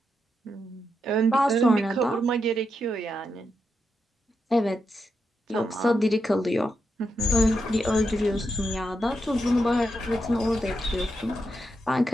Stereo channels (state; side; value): normal; both; correlation 0.84